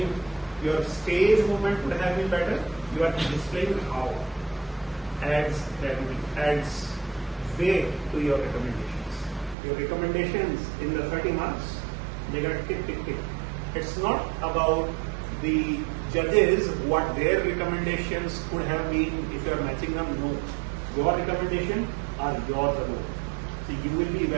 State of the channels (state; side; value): drops out; left; at 9.6 s